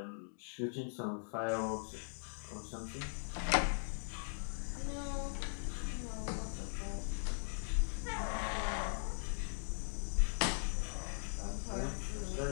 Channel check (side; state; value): right; silent; digital silence